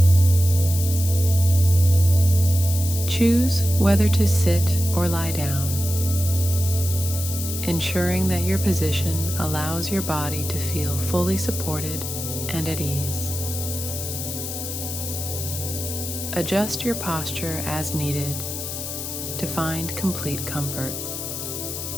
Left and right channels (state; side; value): noise; left; hiss, 6 dB below the sound